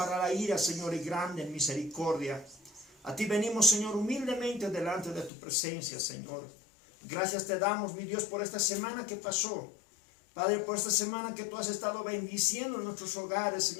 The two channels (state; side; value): drops out; right; at 5.3 s